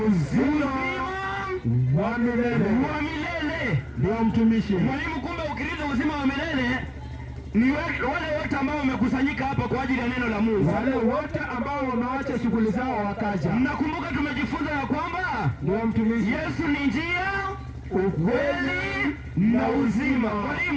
wa milele. Wa milele. Ndio mtumishi. Mwalimu, kumbe ukirithi uzima wa milele ni wale wote ambao wamekusanyika hapa kwa ajili ya neno la Mungu. Wale wote ambao wameacha shughuli zao wakaja. Mnakumbuka tumejifunza ya kwamba ndio mtumishi. Yesu ni njia, ukweli na uzima.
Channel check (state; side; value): identical; both; correlation 1.00